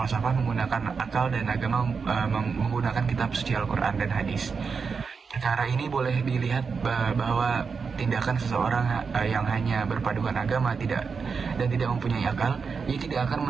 menggunakan akal dan agama menggunakan kitab suci Al-Quran dan hadis. Perkara ini boleh dilihat bahwa tindakan seseorang yang hanya berpadukan agama dan tidak mempunyai akal, ia tidak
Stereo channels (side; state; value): left; quieter; 5.4 dB